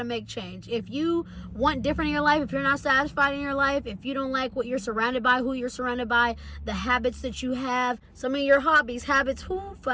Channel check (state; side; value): identical; both; correlation 1.00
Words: make change. If you want different in your life, if you're not satisfied in your life, if you don't like what you're surrounded by, who you're surrounded by, the habits that you have, some of your hobbies, habits, who